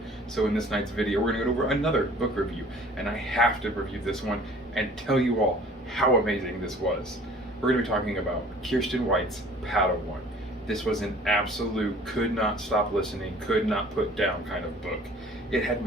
So in this night's video we're going to go over another book review, and I have to review this one and tell you all how amazing this was. We're going to be talking about Kiersten White's Padawan. This was an absolute could not stop listening, could not put down kind of book. It had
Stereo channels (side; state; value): both; normal; correlation 0.50